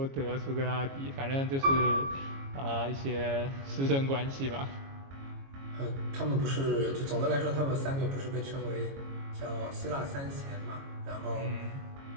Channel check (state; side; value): late; left; 22 ms